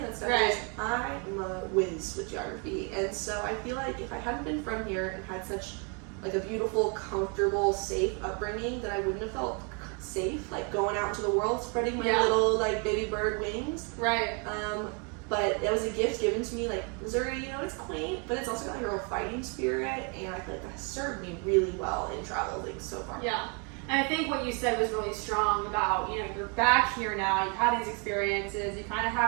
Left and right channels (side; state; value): left; quieter; 35.6 dB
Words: of that stuff is. I'm a whiz with geography. And so I feel like if I hadn't been from here and had such like a beautiful, comfortable, safe upbringing, that I wouldn't have felt safe, like going out into the world, spreading my little like baby bird wings. Right. But it was a gift given to me. Like, Missouri, it's quaint, but it's also got like a real fighting spirit, and I feel like that has served me really well in traveling so far. Yeah. And I think what you said was really strong about, you're back here now, you've had these experiences, you kind of